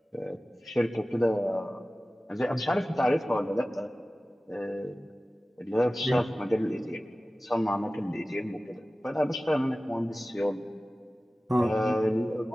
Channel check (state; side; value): normal; both; correlation 0.97